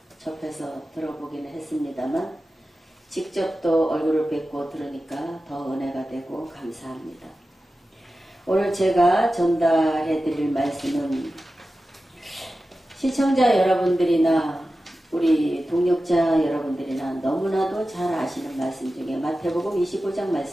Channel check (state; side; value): normal; both; correlation 0.94